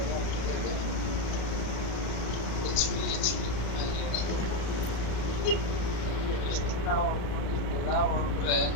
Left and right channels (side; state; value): right; late; 33 ms